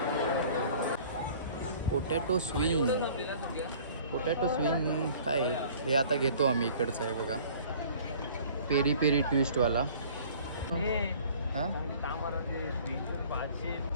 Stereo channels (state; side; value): inverted; both; correlation -0.50